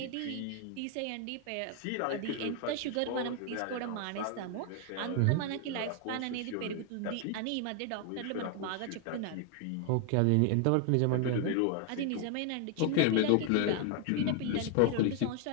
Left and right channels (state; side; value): different; both; correlation 0.00